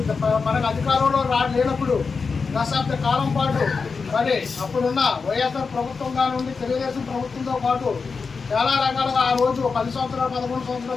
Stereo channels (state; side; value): quieter; right; 4.9 dB